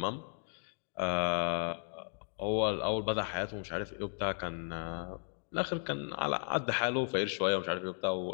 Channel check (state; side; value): silent; right; 54 dB below the other